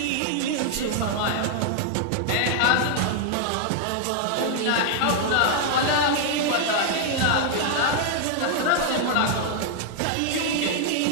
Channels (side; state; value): both; different; correlation 0.00